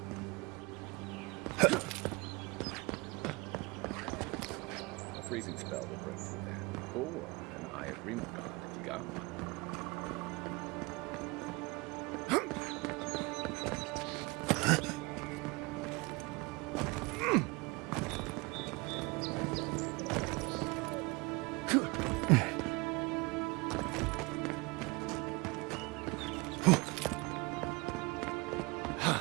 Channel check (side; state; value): left; quieter; 26.0 dB